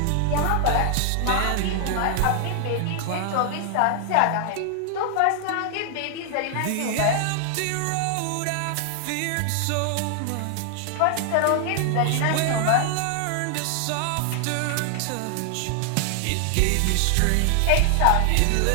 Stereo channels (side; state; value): both; different; correlation 0.00